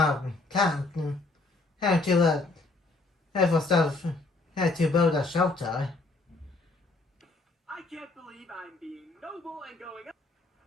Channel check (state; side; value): quieter; right; 3.3 dB